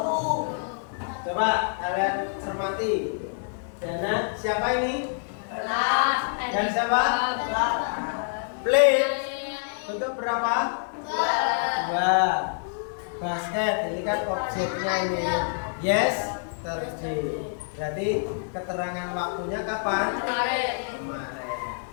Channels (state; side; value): silent; right; digital silence